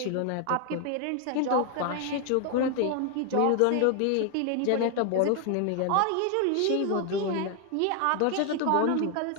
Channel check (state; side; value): different; both; correlation 0.00